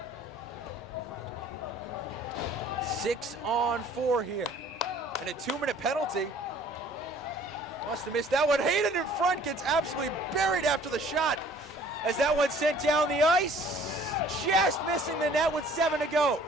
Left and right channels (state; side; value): normal; both; correlation 0.54